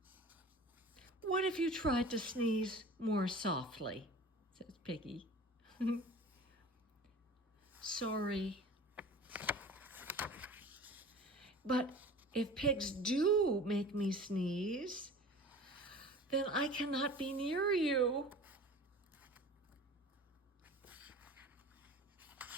What if you tried to sneeze more softly? Says Piggy. Sorry. But if pigs do make me sneeze, then I cannot be near you.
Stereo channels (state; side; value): normal; both; correlation 0.40